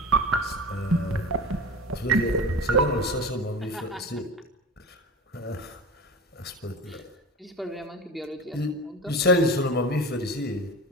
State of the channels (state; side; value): normal; both; correlation 0.31